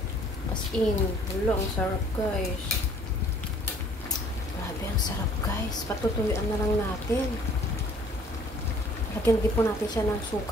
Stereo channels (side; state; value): both; normal; correlation 0.56